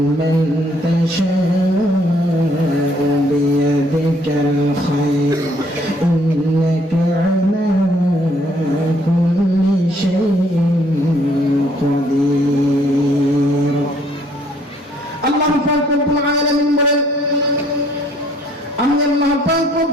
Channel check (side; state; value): both; normal; correlation 0.64